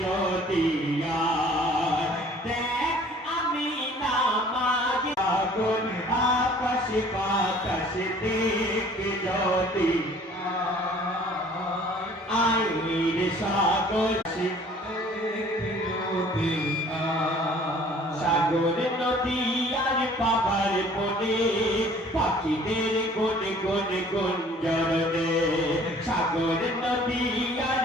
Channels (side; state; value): both; normal; correlation 0.53